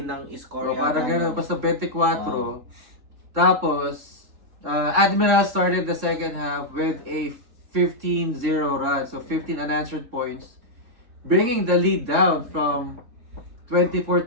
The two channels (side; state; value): left; late; 3.6 ms